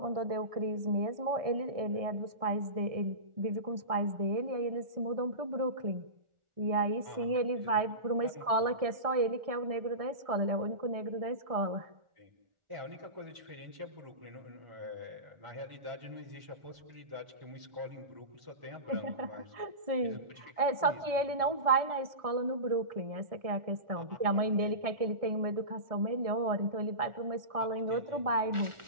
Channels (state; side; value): late; left; 1.6 ms